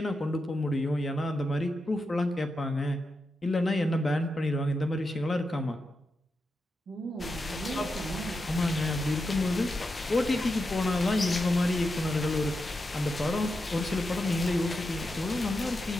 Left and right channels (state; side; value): normal; both; correlation 0.88